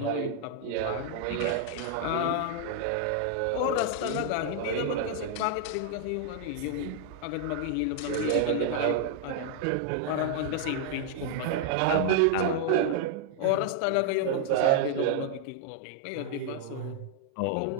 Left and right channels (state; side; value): different; both; correlation -0.01